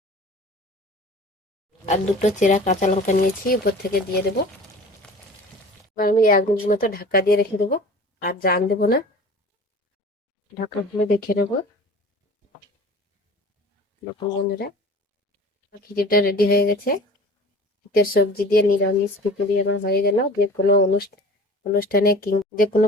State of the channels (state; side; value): normal; both; correlation 0.42